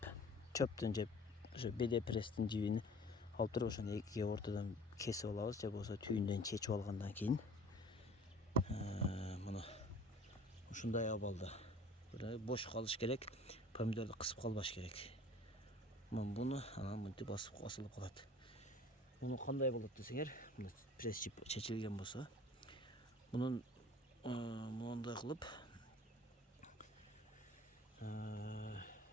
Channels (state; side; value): normal; both; correlation 0.48